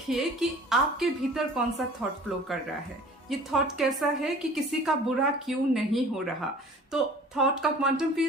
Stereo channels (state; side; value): normal; both; correlation 0.46